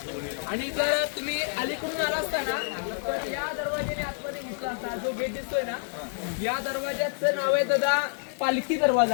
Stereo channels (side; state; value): right; silent; digital silence